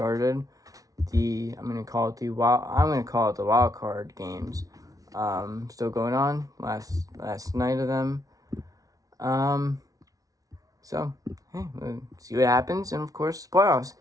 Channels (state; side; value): late; left; 0.18 ms